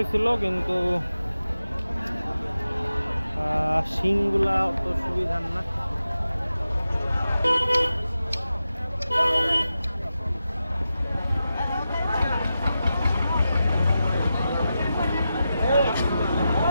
কিন্তু শিংগুলা অত সুবিধার না।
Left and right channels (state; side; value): inverted; both; correlation -0.91